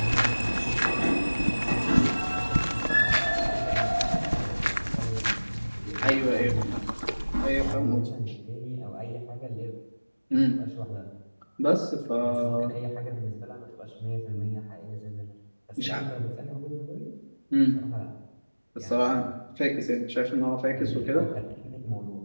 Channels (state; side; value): inverted; both; correlation -1.00